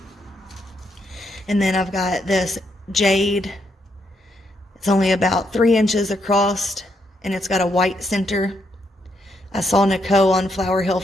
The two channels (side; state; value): both; normal; correlation 0.77